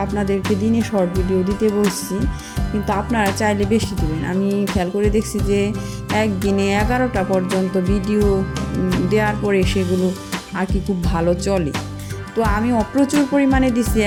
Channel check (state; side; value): identical; both; correlation 1.00